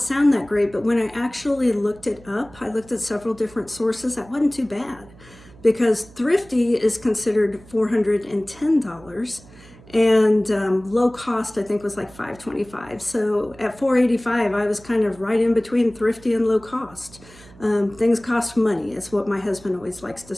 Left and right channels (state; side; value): noise; right; hum, 23 dB below the sound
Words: sound that great, but when I actually looked it up, I looked at several different sources. That wasn't too bad, because thrifty is considered $410, and low cost I think was like $525. So at $485, I was kind of right in between thrifty and low cost. Things cost money, is what my husband always likes to